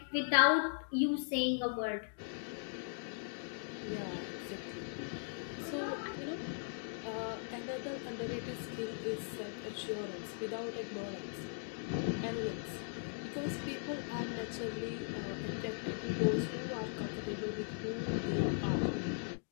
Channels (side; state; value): right; silent; digital silence